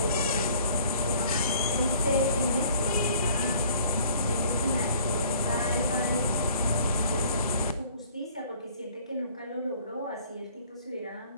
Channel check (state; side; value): inverted; both; correlation -0.55